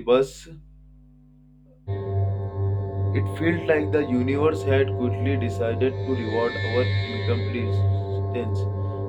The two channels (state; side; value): identical; both; correlation 1.00